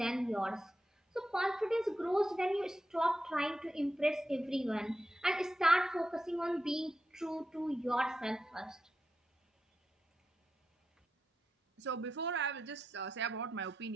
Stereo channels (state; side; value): normal; both; correlation 0.88